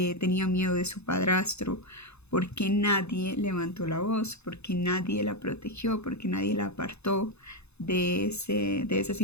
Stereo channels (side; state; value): right; late; 0.80 ms